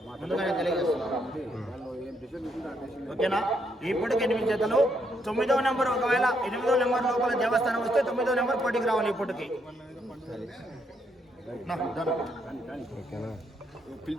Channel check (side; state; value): both; normal; correlation 0.75